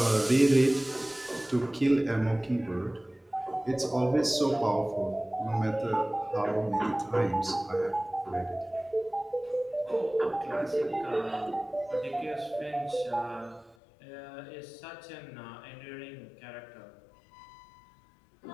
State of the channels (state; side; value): drops out; right; at 13.8 s